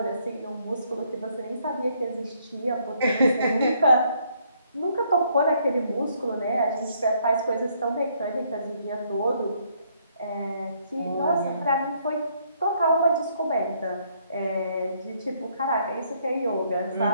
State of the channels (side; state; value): both; inverted; correlation -0.69